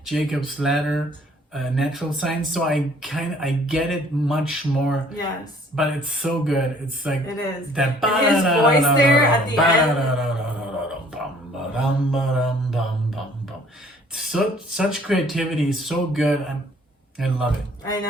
Jacob's Ladder, Natural Science, so I get it much more. Yes. But it's so good. It's like It is. that. And his voice there at the end. Such creativity, so good. I love it. I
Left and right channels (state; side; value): normal; both; correlation 0.57